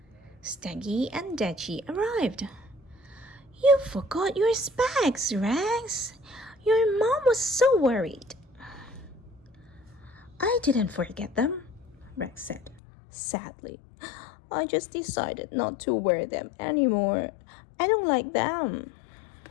Steggy and Dachi arrived. "You forgot your specs, Rex. Your mom was so worried." "I didn't forget them," Rex said, sadly. "I just decided not to wear them anymore. I don't like them."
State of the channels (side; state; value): right; drops out; at 12.8 s